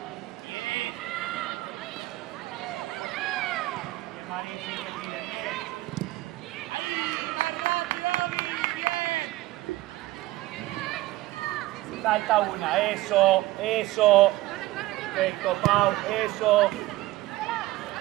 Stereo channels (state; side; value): quieter; left; 17.9 dB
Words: Salta una, eso. Perfecto, Pau, eso.